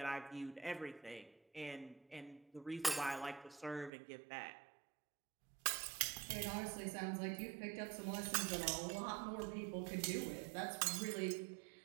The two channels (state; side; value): drops out; left; at 3.9 s